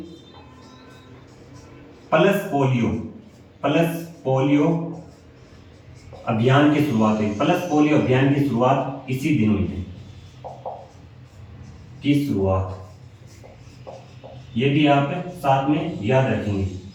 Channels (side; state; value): both; identical; correlation 1.00